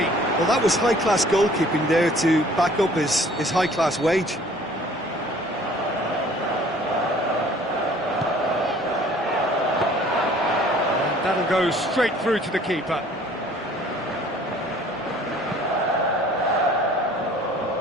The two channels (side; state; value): both; normal; correlation 0.53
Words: Well, that was high-class goalkeeping there to back up his high-class wage. And that'll go straight through to the keeper.